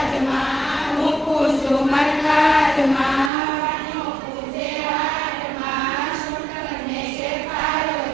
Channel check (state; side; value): drops out; left; at 3.3 s